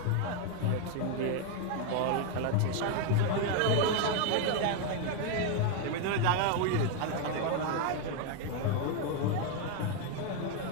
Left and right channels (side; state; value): both; different; correlation 0.01